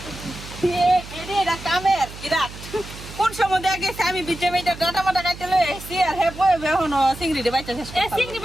এটা কামের বিরাট। কোন সময় দেখা গেছে আমি বিজে মেয়েটা ডাটা মাটা কাটতে লয়ে এসেছি আর হে বয়ে এখনো চিংড়িটা বাইতে শেষ এই করতে চিংড়ি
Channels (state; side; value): noise; right; hum, 14 dB below the sound